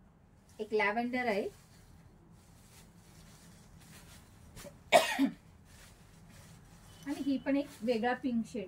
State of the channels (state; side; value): identical; both; correlation 1.00